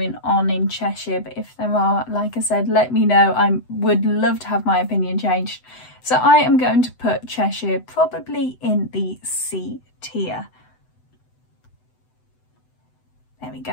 on in Cheshire, but if there are, like I said, let me know. I would love to have my opinion changed. So I am going to put Cheshire probably in the C tier. There we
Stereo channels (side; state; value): right; late; 8.0 ms